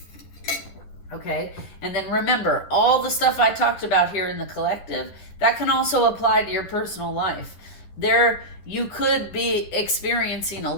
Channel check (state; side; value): late; right; 11 ms